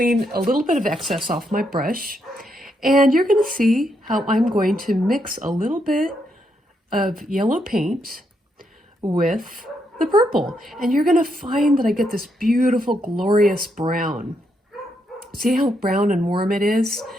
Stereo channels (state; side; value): normal; both; correlation 0.78